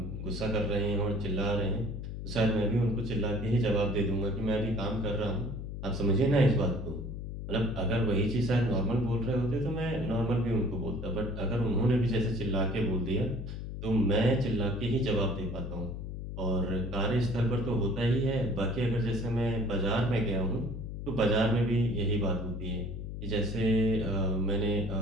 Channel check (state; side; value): noise; left; hum, 7 dB below the sound